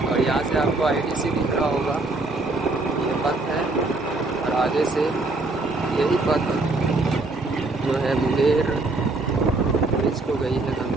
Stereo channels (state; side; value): quieter; left; 3.2 dB